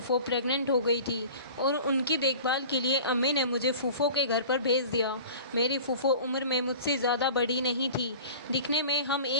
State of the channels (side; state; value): both; inverted; correlation -0.40